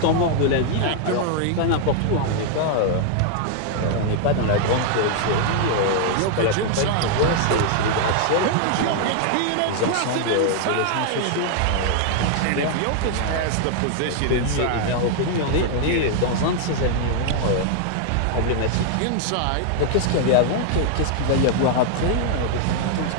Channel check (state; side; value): different; both; correlation 0.00